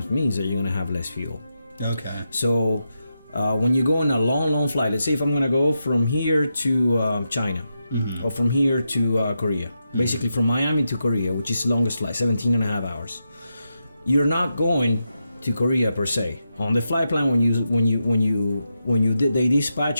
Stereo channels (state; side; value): inverted; both; correlation -0.87